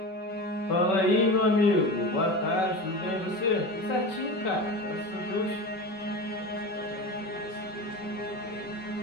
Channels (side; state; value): right; late; 5.3 ms